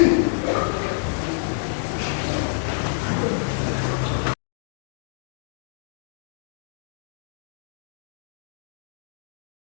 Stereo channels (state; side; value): silent; right; digital silence